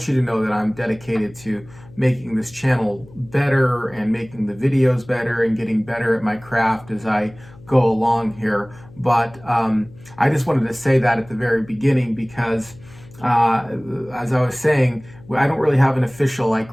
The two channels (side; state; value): left; noise; hum, 22 dB below the sound